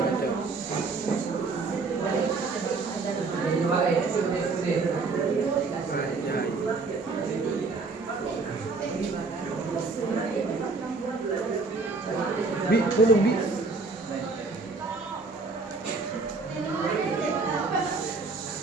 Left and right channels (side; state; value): left; quieter; 4.0 dB